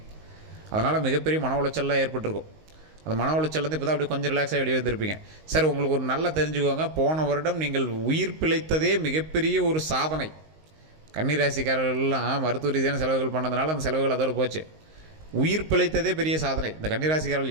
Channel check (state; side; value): late; left; 19 ms